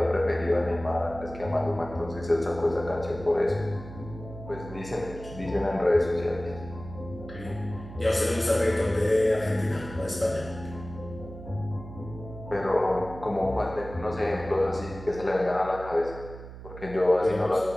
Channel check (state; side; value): noise; right; hum, 13 dB below the sound